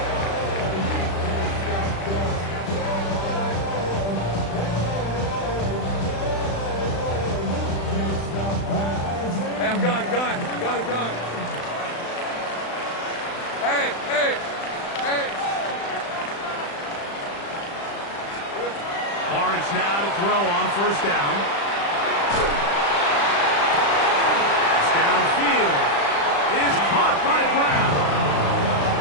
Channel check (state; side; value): late; right; 35 ms